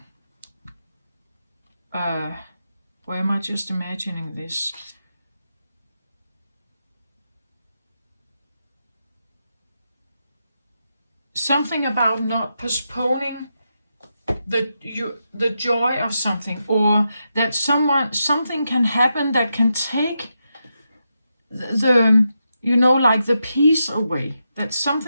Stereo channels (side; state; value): both; inverted; correlation -0.86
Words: Or am I just imagining this? Something about not postponing the joy of something, or that something can happen that can take the like the peace away. That